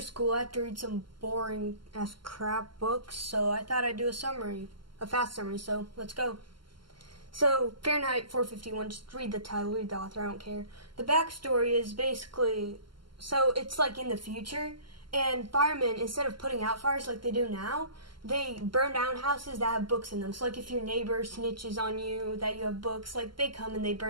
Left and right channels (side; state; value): left; late; 0.72 ms